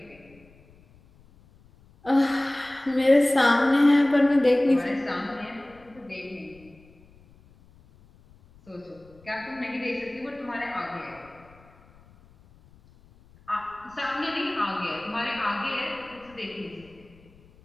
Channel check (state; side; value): noise; left; rumble, 27 dB below the sound